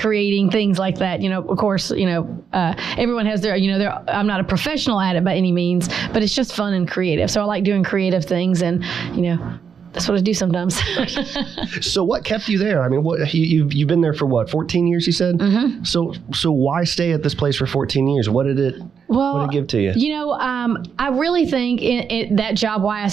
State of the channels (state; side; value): quieter; left; 6.8 dB